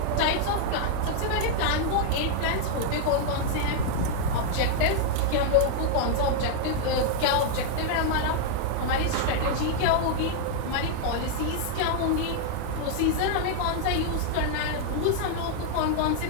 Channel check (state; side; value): different; both; correlation -0.01